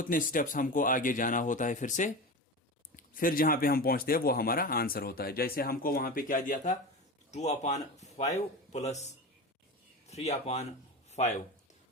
स्टेप्स हमको आगे जाना होता है फिर से, फिर जहां पे हम पहुंचते हैं वो हमारा आंसर होता है। जैसे हमको वहां पे क्या दिया था, 2/5 प्लस 3/5।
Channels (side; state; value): both; normal; correlation 0.26